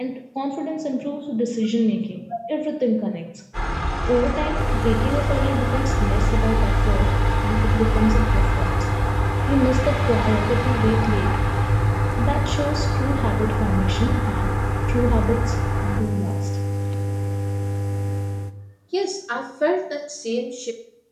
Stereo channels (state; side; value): identical; both; correlation 1.00